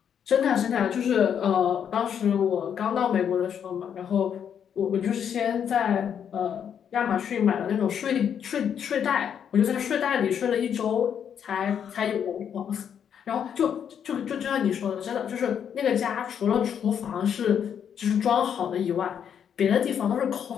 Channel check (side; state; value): right; quieter; 8.3 dB